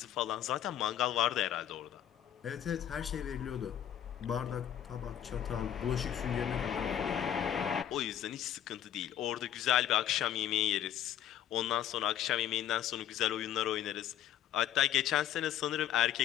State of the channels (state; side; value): quieter; right; 10.8 dB